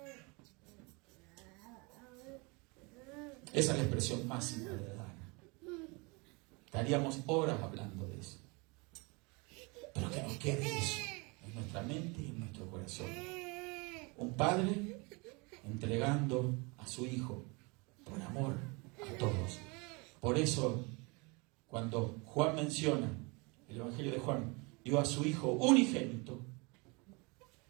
Esa es la expresión máxima de dar. Estaríamos horas hablando de eso. Pero que nos quede eso en nuestra mente y en nuestro corazón. Un padre entregando a su Hijo por amor a todos. Por eso, cuando Juan menciona, el Evangelio de Juan, dio a su Hijo unigénito,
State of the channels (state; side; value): quieter; left; 28.6 dB